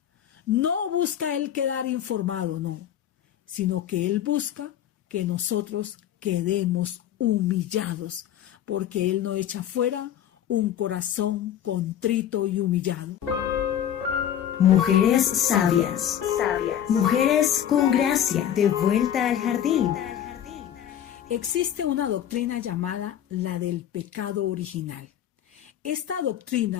No busca Él quedar informado, no, sino que Él busca que nosotros quedemos humillados, porque Él no echa fuera un corazón contrito y humillado. Mujeres sabias, mujeres con gracia, de vuelta al jardín. Existe una doctrina llamada la del pecado original. Esta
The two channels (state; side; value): quieter; right; 10.4 dB